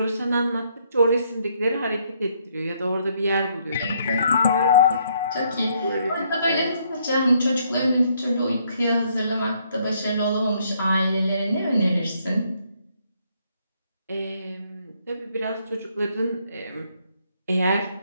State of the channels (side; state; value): both; inverted; correlation -0.70